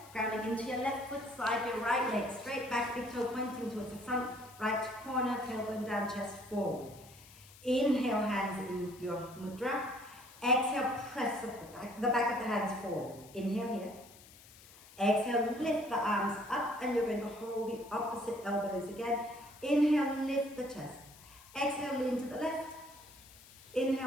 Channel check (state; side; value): noise; left; hiss, 21 dB below the sound